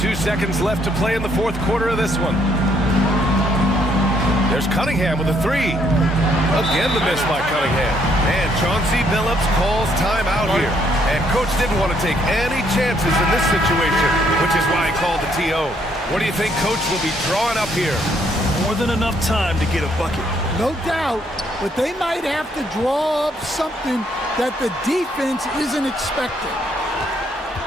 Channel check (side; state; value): both; normal; correlation 0.70